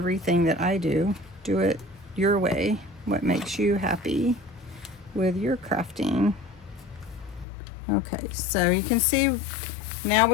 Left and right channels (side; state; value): right; drops out; at 7.5 s